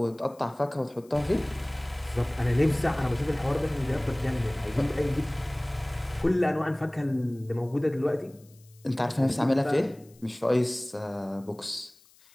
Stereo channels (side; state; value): left; noise; hiss, 29 dB below the sound